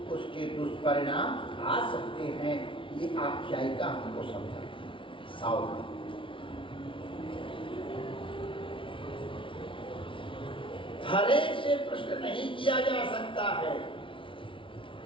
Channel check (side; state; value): right; late; 0.25 ms